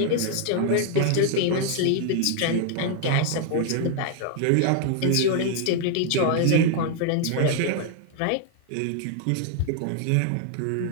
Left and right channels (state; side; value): different; both; correlation -0.01